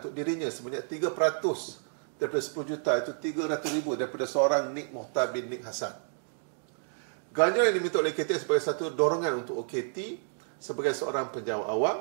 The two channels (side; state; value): left; silent; digital silence